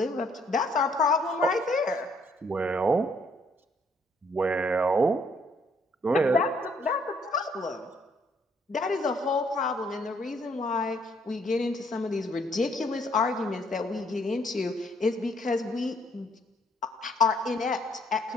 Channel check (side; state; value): both; normal; correlation 0.67